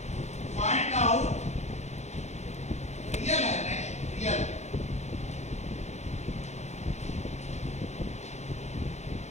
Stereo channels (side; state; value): right; late; 0.33 ms